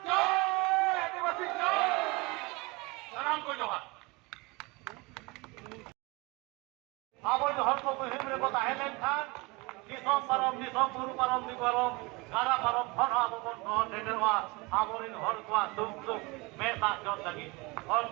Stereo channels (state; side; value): quieter; left; 25.5 dB